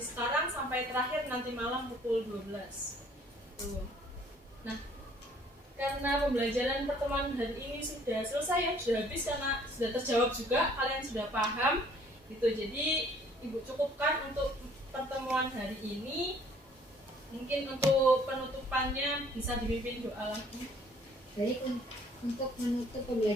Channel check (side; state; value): both; normal; correlation 0.58